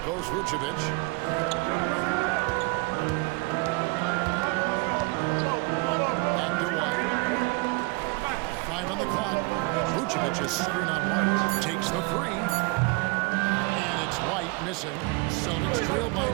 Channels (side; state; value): left; quieter; 26.9 dB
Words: Vucevic. Back to White. 5 on the clock. Vucevic is screen on White. Takes the three. And it's White missing. Celtics trail by